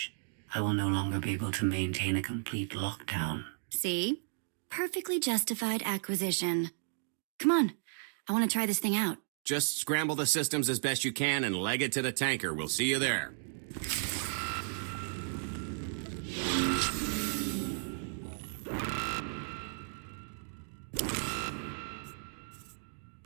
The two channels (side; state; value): left; silent; digital silence